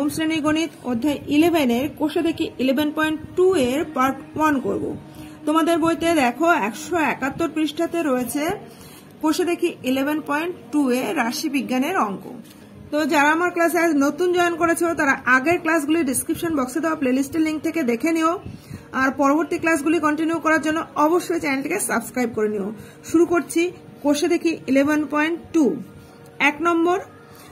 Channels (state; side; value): identical; both; correlation 1.00